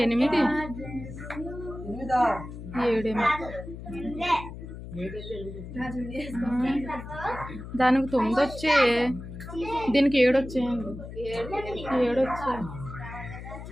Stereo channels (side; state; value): left; noise; hum, 11 dB below the sound